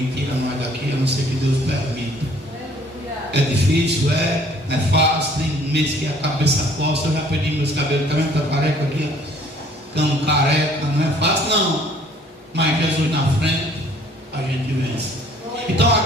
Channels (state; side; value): normal; both; correlation 0.57